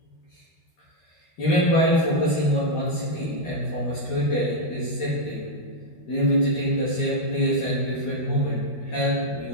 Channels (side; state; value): right; late; 13 ms